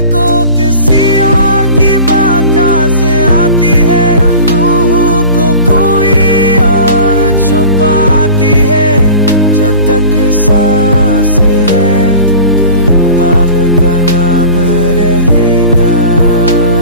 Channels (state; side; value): inverted; both; correlation -0.39